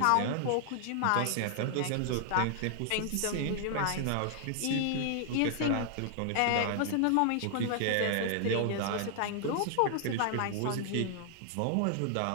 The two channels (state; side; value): different; both; correlation 0.00